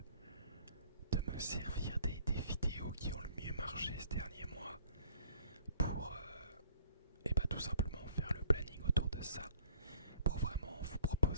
de me servir des vidéos qui ont le mieux marché ce dernier mois pour tout simplement faire le planning autour de ça, pour vraiment vous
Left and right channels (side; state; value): both; inverted; correlation -0.55